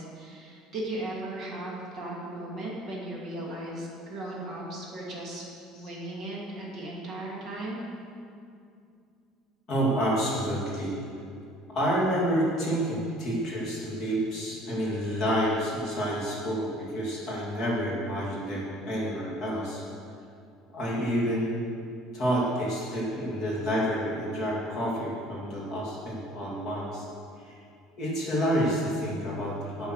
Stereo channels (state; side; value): normal; both; correlation 0.53